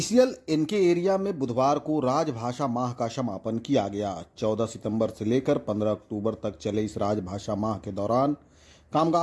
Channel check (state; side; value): identical; both; correlation 1.00